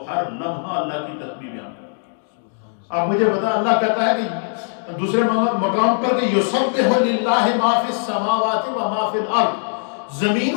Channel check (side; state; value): right; silent; digital silence